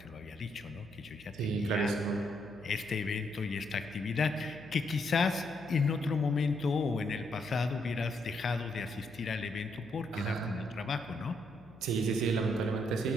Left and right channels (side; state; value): left; noise; hum, 23 dB below the sound